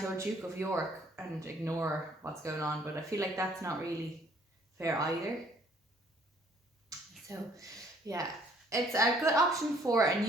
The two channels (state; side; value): normal; both; correlation 0.61